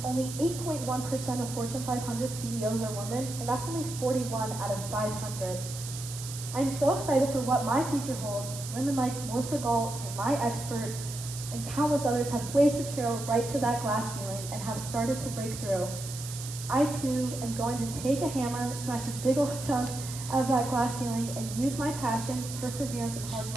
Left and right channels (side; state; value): right; noise; hiss, 10 dB below the sound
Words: only 8.1% of Fortune 500 CEOs are women, and that's only 41 out of 500. I'm so excited for what my future holds. Women like Melissa Galt and my expert and countless others have blazed a trail right to that glass ceiling and have started to break through. I too am going to take a hammer, smash a big old chunk out of that glass ceiling, and use my passion, perseverance, and hard